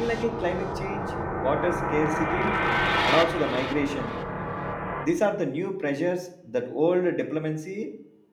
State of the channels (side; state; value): both; identical; correlation 1.00